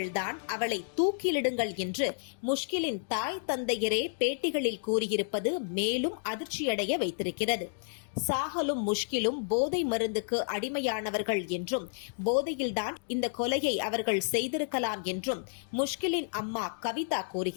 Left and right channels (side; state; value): right; silent; digital silence